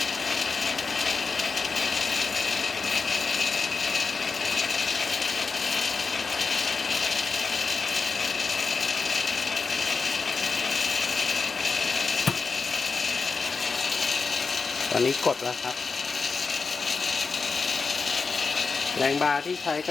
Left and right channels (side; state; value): right; quieter; 4.6 dB